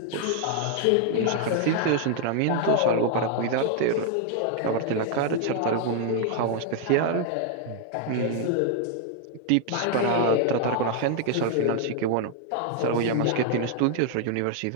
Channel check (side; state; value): both; different; correlation 0.00